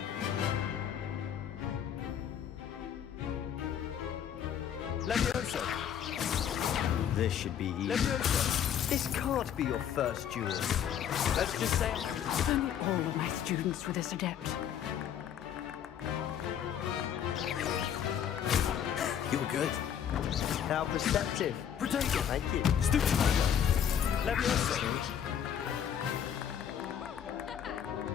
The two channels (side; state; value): right; quieter; 9.1 dB